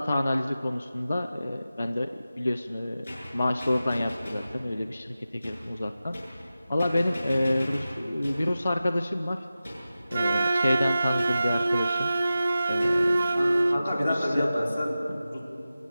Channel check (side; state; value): both; inverted; correlation -0.94